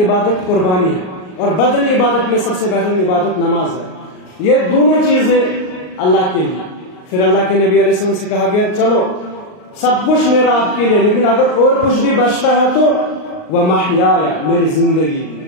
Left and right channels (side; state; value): right; late; 38 ms